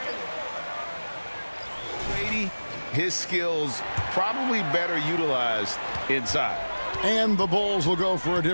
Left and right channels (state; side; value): inverted; both; correlation -1.00